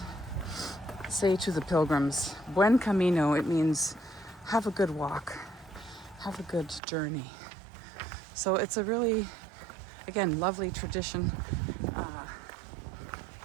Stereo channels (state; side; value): drops out; left; at 6.8 s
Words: say to the pilgrims, Buen Camino. It means have a good walk, have a good journey. So it's a really, again, lovely tradition.